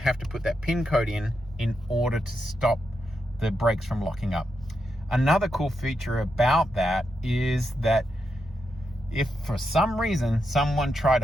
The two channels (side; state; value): both; normal; correlation 0.85